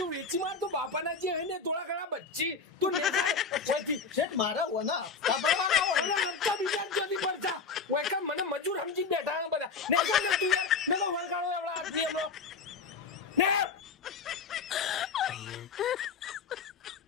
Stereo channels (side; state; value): right; quieter; 4.9 dB